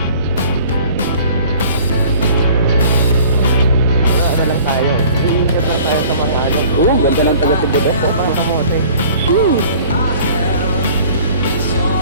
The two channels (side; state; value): both; inverted; correlation -0.50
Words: Ano lang tayo. Iingat lang tayo sa mga ano. Oo, ganda ng taga-Tibudok po. Mga kamote.